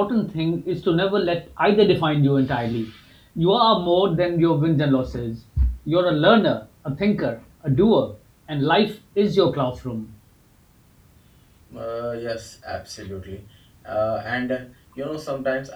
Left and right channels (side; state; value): both; identical; correlation 1.00